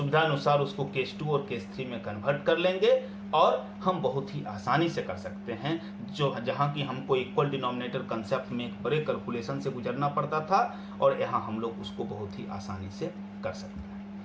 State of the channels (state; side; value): identical; both; correlation 1.00